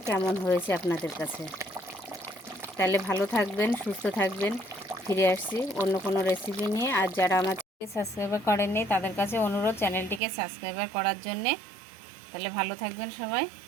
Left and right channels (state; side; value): drops out; left; at 10.2 s